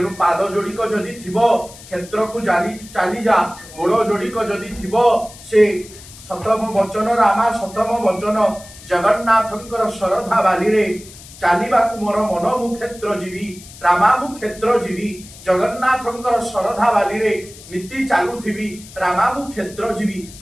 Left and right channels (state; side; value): noise; left; hiss, 18 dB below the sound